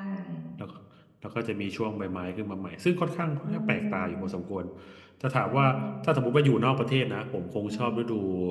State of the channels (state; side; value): identical; both; correlation 1.00